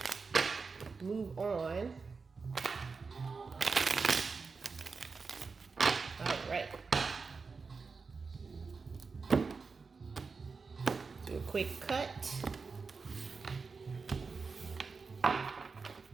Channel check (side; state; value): left; quieter; 4.7 dB